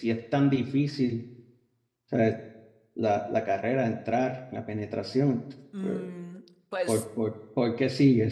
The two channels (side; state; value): both; identical; correlation 1.00